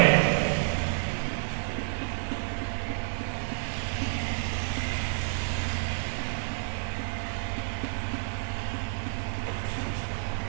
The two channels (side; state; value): left; silent; digital silence